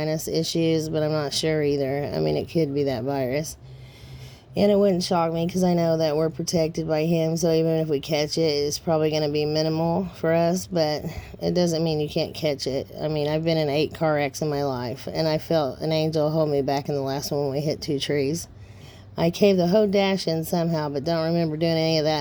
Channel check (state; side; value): identical; both; correlation 1.00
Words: issues, but I'm not sure either. I mean, it could be that virus. And it wouldn't shock me because I know that we're protected by him, so even if we catch it, it's probably going to be minimal for us, but it doesn't mean you can't catch it. I mean, I've been in 8 car wrecks in my life, and I felt an angel hold me back in the last one when we hit 2 trees. I caved the whole dash in somehow, but don't remember doing any of